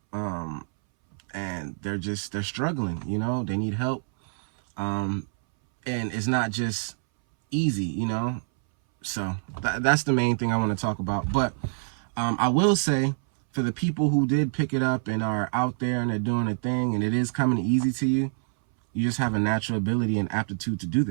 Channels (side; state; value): left; silent; 61 dB below the other